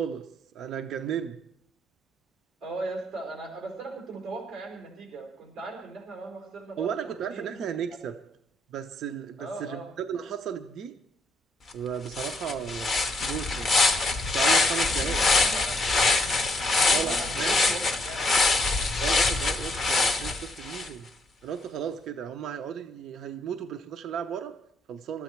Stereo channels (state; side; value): normal; both; correlation 0.71